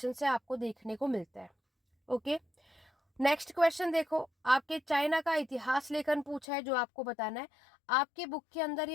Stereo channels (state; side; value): drops out; right; at 6.5 s